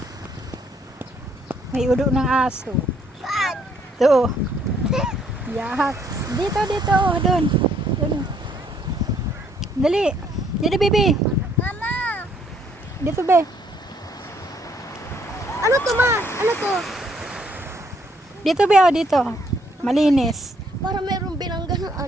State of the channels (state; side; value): normal; both; correlation 0.67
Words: May ulo ng aso. Saan? Ito. Yak. Dito, dito. Doon. Doon. Dali. Dito, baby. Mama! Dito, be. Ano to, ma? Ano to? Dito, be. Oh, dito. Malinis. Para mayroong binangga ng